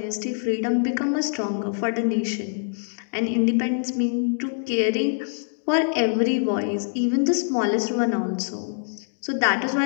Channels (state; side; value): silent; right; digital silence